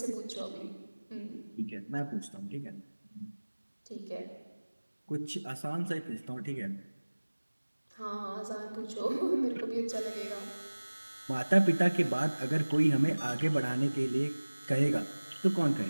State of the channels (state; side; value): inverted; both; correlation -1.00